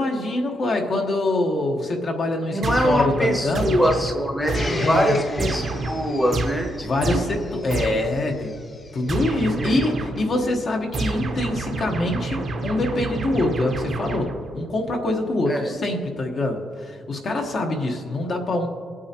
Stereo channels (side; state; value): both; normal; correlation 0.79